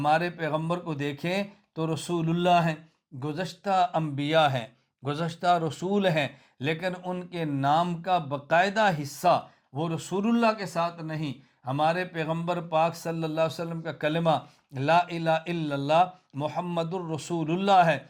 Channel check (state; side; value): identical; both; correlation 1.00